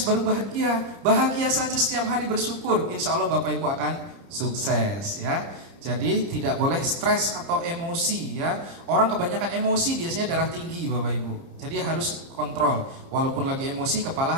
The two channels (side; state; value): left; late; 30 ms